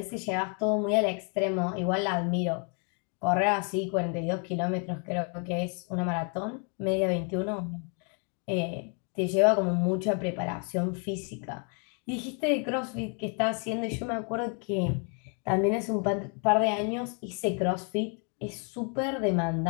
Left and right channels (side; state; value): right; quieter; 39.0 dB